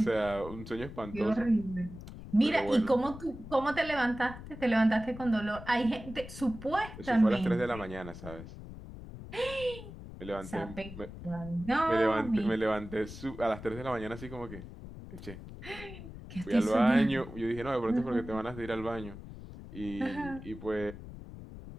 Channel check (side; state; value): left; noise; rumble, 13 dB below the sound